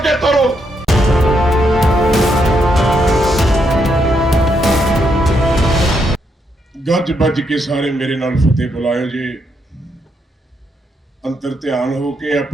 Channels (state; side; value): normal; both; correlation 0.78